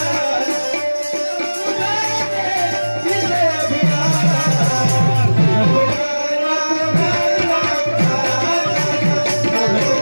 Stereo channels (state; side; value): inverted; both; correlation -1.00